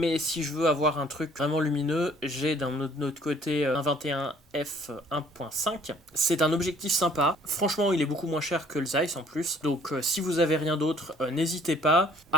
si je veux avoir un truc vraiment lumineux, j'ai d'un autre côté un 21 f 1.5. C'est un objectif sympa. Franchement, il est beaucoup moins cher que le Zeiss en plus. Donc si vous avez rien d'autre, n'hésitez pas.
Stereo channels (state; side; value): normal; both; correlation 0.58